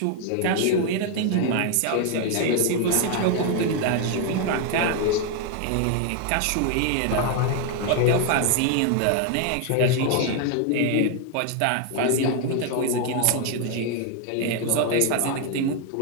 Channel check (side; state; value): both; different; correlation 0.01